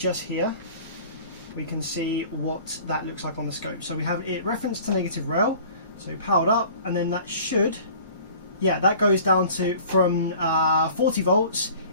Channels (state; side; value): inverted; both; correlation -0.46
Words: here, we can see what that looks like on the scope. So we have it referenced to negative rail, so powered up, and then that should, yeah, that goes down to from 40 volts,